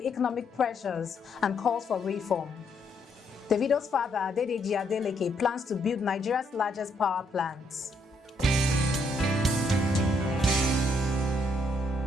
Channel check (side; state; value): both; normal; correlation 0.73